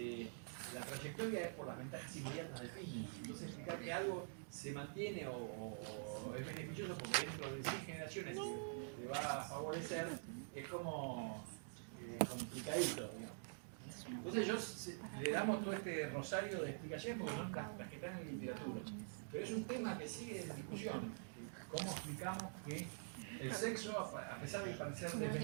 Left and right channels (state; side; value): silent; left; digital silence